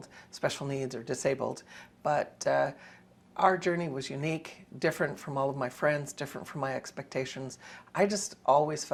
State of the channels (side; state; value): both; identical; correlation 1.00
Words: special needs or disabled. But our journey was unique, different from all of my friends, different from my expectations. I just always